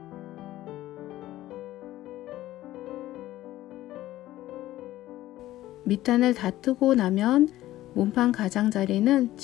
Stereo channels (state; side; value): quieter; right; 15.1 dB